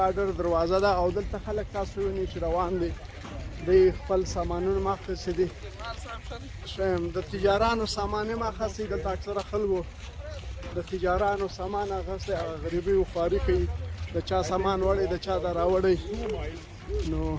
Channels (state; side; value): identical; both; correlation 1.00